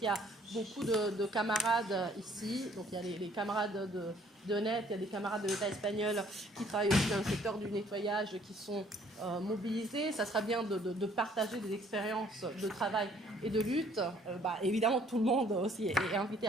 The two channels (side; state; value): both; normal; correlation 0.60